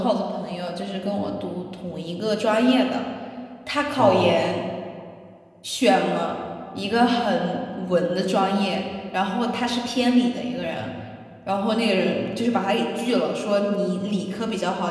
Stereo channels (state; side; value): identical; both; correlation 1.00